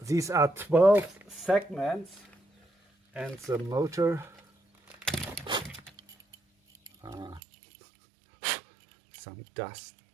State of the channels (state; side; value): drops out; left; at 7.4 s